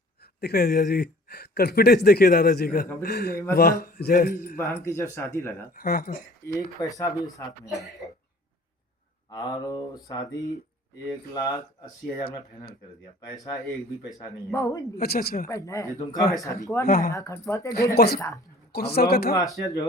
दिख रहे हैं जीजा जी, कॉन्फिडेंस देखिए दादाजी का। कंपनी नहीं, वाह, मतलब जय। मेरी बहन की जब शादी लगा, हाँ हाँ। एक पैसा भी साथ में नहीं था, और वो शादी 1,80,000 में फाइनल कर दिया, पैसा एक भी पैसा नहीं है। बहुत दिन अच्छा अच्छा। पहले ये दुमका में हाँ शादी कौन की। हाँ, है हाँ। खटपा तो ढेर कौन सा पैसा। कौन सा हम साल का लोगों को था? आश्चर्य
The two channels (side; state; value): both; normal; correlation 0.49